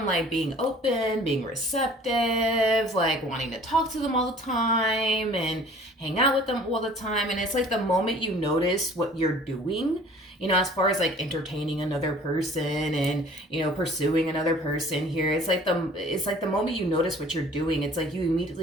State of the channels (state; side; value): normal; both; correlation 0.50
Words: like being open, being receptive, like wanting to talk to them all the time and hang out with them all the time, and it's like the moment you notice what you're doing, you know, as far as like entertaining another person and, you know, pursuing another person here, it's like the moment you notice what you're doing, it's like you